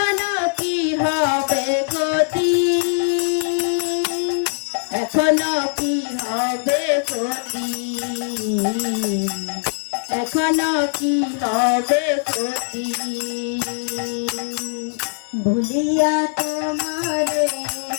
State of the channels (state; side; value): silent; right; 63 dB below the other